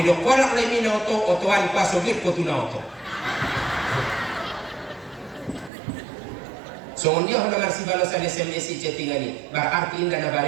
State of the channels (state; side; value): drops out; left; at 5.7 s